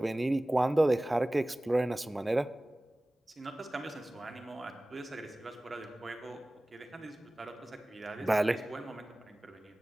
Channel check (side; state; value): both; normal; correlation 0.98